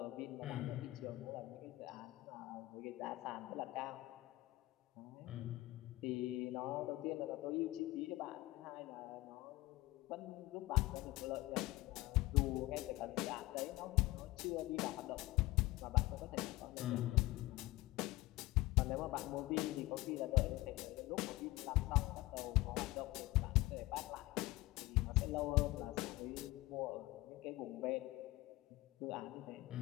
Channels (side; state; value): right; quieter; 19.1 dB